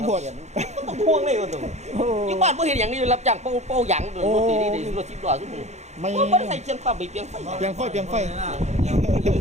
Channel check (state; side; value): late; left; 0.33 ms